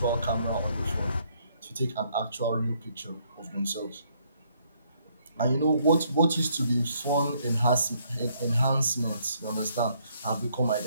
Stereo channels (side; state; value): both; inverted; correlation -0.69